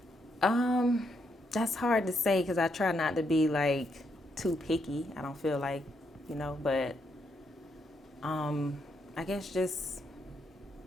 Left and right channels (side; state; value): both; normal; correlation 0.78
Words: That's hard to say because I try not to be like too picky. I don't feel like, but I guess just